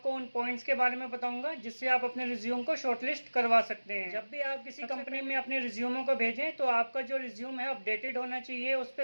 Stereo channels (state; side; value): inverted; both; correlation -1.00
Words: उन पॉइंट्स के बारे में बताऊंगा जिससे आप अपने रिज्यूम को शॉर्टलिस्ट करवा सकते हैं। जब भी आप किसी कंपनी में अपने रिज्यूमों को भेजें तो आपका जो रिज्यूम है अपडेटेड होना चाहिए, उस